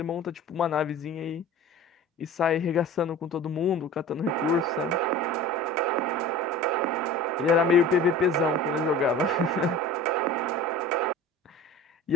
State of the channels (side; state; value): both; normal; correlation 0.38